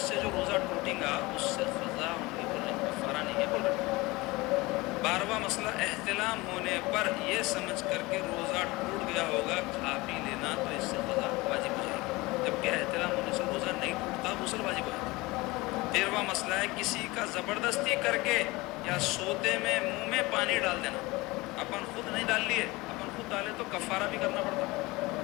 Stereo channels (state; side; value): quieter; right; 22.1 dB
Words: سے جو روزہ ٹوٹیں گا اس سے قضا ہوں گی بول رہے ہیں، کفارہ نہیں ہے بول رہے ہیں۔ 12واں مسئلہ، احتلام ہونے پر یہ سمجھ کر کے روزہ ٹوٹ گیا ہوگا کھا پی لینا، تو اس سے قضا واجب ہو جائے گی، جبکہ احتلام ہونے سے روزہ نہیں ٹوٹتا، غسل واجب ہو جاتا ہے۔ 13واں مسئلہ ہے، کسی کا زبردستی کر کے یا سوتے میں منہ میں پانی ڈال دینا۔ اپن خود نہیں ڈال لیے، اپن خود ڈالے تو کفارہ بھی کرنا پڑتا،